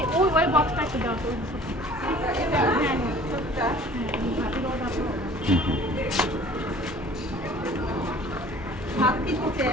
ওই বক্সটা একটু দাও তো ভাত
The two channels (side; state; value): both; normal; correlation 0.49